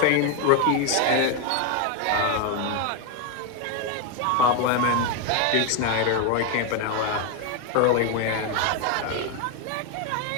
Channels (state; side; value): different; both; correlation 0.01